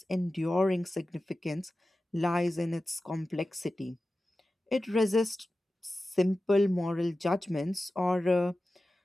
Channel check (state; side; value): normal; both; correlation 0.94